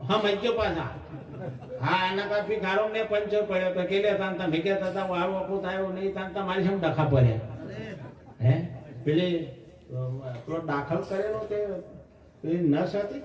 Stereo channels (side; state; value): both; identical; correlation 1.00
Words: હા મજ્જો પાછા હા આના પર ભિખારો ને પંચર પડ્યો તો કે લેતા તમે કહેતા હતા વાર ઓકો થાય એવું નહીં થાય. તમારી સામે ડખા પડ્યા. હે પેલી પેલો દાખલ કરેલો તે પેલી નસ હતી